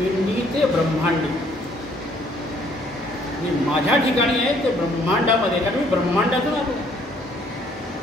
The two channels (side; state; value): both; normal; correlation 0.63